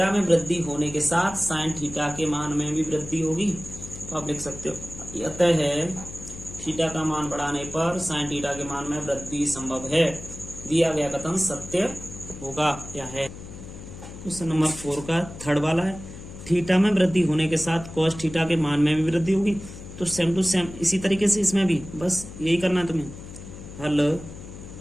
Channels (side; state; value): left; noise; hum, 13 dB below the sound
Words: में वृद्धि होने के साथ साइन थीटा के मान में भी वृद्धि होगी, तो आप लिख सकते हो अतः है थीटा का मान बढ़ाने पर साइन थीटा के मान में वृद्धि संभव है। दिया गया कथन सत्य होगा या है। क्वेश्चन नंबर 4 का थर्ड वाला है, थीटा में वृद्धि होने के साथ कॉस थीटा के मान में भी वृद्धि होगी। तो सेम टू सेम इसी तरीके से इसमें भी बस यही करना है तुम्हें, हल